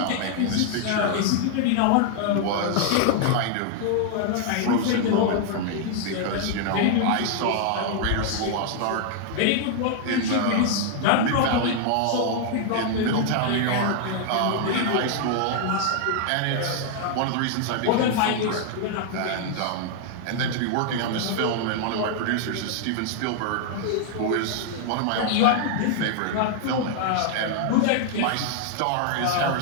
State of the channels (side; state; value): both; different; correlation 0.00